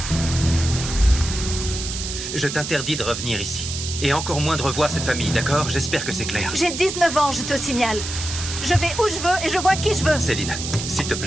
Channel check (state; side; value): noise; right; hiss, 6 dB below the sound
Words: Je t'interdis de revenir ici. Et encore moins de revoir cette famille, d'accord? J'espère que c'est clair. J'ai 19 ans, je te signale. Je vais où je veux et je vois qui je veux. Céline, s'il te